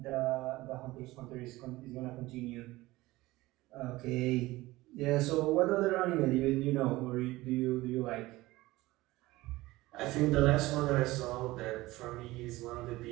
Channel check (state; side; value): quieter; left; 18.9 dB